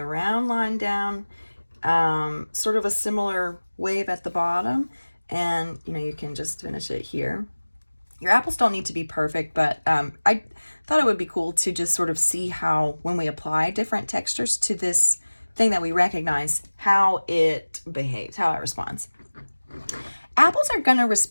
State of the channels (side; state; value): both; inverted; correlation -1.00